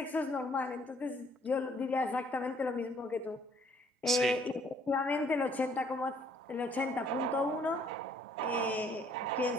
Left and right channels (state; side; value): normal; both; correlation 0.62